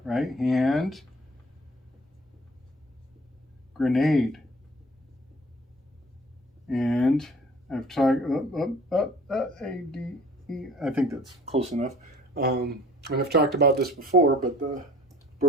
right? Hand, grenade. And I've talked, A-D-E, I think that's close enough. And I've talked about this before, but the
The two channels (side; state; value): both; normal; correlation 0.49